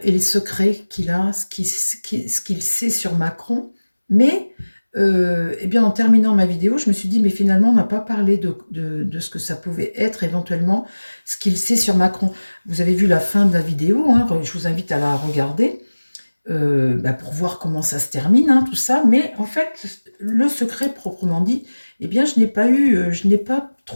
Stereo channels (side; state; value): both; inverted; correlation -1.00